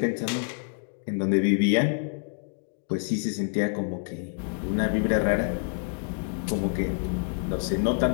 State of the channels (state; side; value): silent; right; digital silence